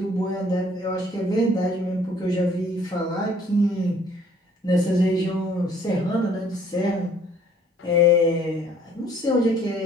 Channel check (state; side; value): normal; both; correlation 0.59